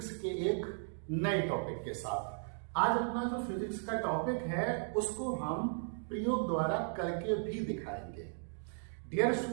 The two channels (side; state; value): left; silent; digital silence